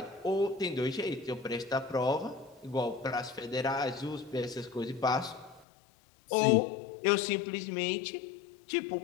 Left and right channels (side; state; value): right; drops out; at 5.7 s